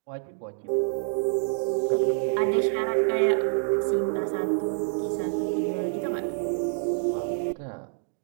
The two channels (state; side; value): silent; left; digital silence